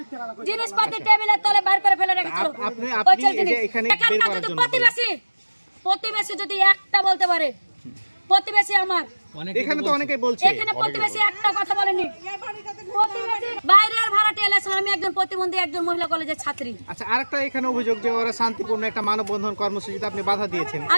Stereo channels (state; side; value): inverted; both; correlation -1.00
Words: জিনিসপাতি টেবিলের তলে বাইর করে ফেলে রেখেছিল। আপনি এখানে বের করার জন্য প্রতিবেশী যদি একটা বলতে পারে, প্রতিবেশী আমার এখানে তো অনেকেই বলছে, এখানে প্রতিবেশী একটা কথা বলেনি। প্রতিবেশী বাইরের ভাড়াটে এলেছিল, আমি একজন প্রতিবন্ধী, একজন মহিলা কলেজের ছাত্রী। আচ্ছা, আরেকটা এখানে অভিযোগ যে ওরা শান্তিপূর্ণ একটা মানববন্ধন কর্মসূচিতে আপনি বাধা দিয়েছেন।